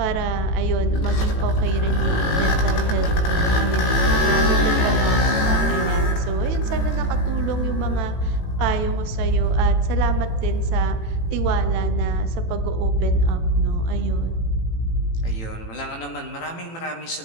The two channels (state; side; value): late; right; 18 ms